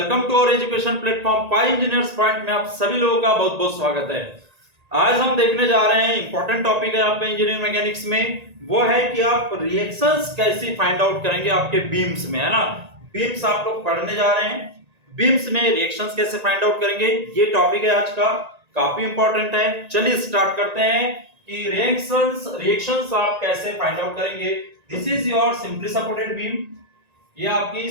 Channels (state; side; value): late; left; 1.9 ms